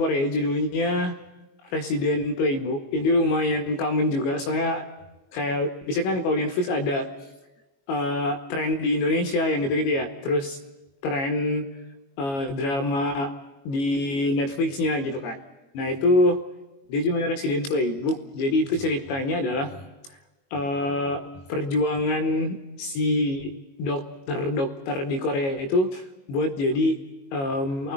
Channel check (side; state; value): right; late; 22 ms